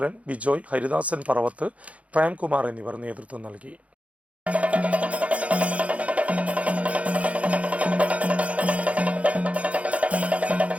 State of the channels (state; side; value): late; left; 0.065 ms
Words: ബിജോയ്, ഹരിദാസൻ പറവത്ത്, പ്രേംകുമാർ എന്നിവർ നേതൃത്വം നൽകി.